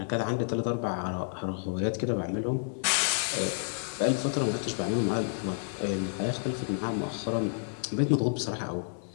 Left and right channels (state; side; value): silent; right; digital silence